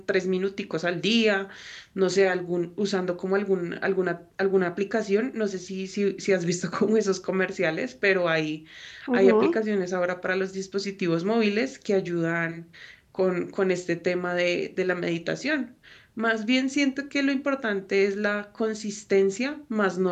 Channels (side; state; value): both; identical; correlation 1.00